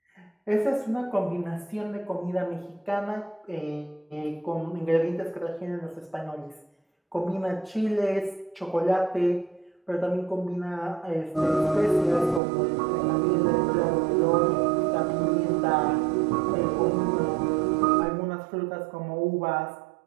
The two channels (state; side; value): drops out; left; at 12.4 s